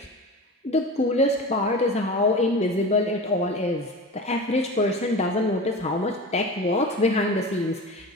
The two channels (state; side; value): normal; both; correlation 0.31